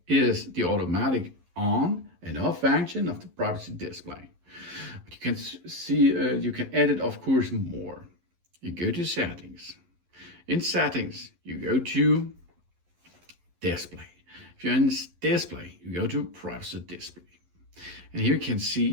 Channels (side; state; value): left; late; 11 ms